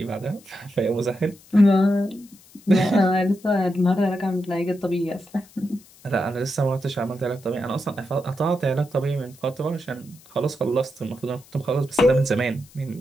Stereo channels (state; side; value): noise; left; hiss, 25 dB below the sound